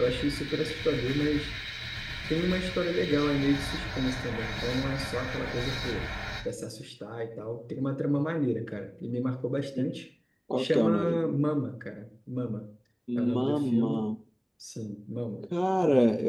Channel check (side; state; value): both; identical; correlation 1.00